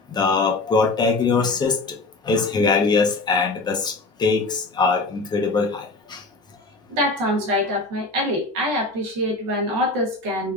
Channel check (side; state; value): right; quieter; 3.2 dB